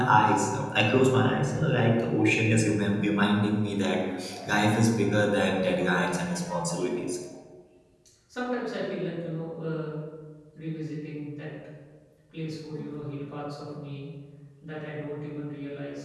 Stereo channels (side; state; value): both; identical; correlation 1.00